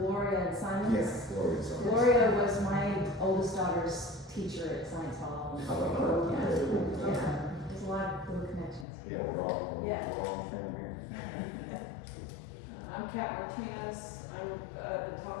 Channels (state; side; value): drops out; right; at 8.8 s